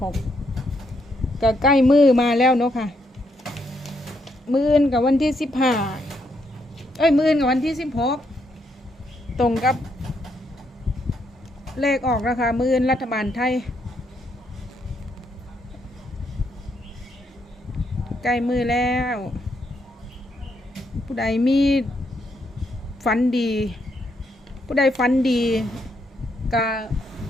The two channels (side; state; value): both; normal; correlation 0.76